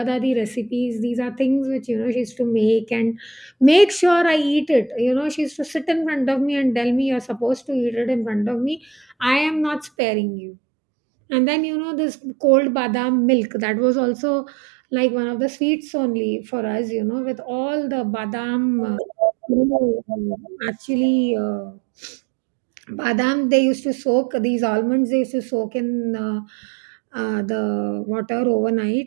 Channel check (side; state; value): left; drops out; at 9.9 s